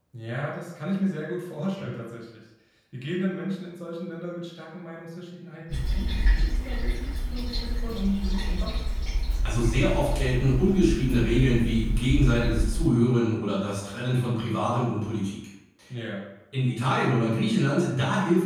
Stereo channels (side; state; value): both; identical; correlation 1.00